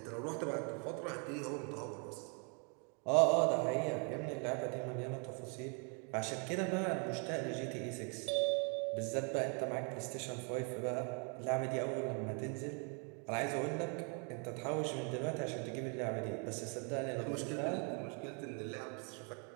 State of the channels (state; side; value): quieter; left; 37.6 dB